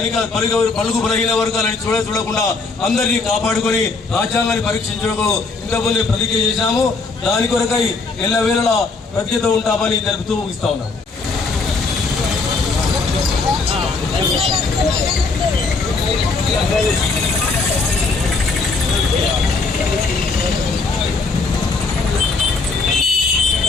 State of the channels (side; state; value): right; quieter; 4.1 dB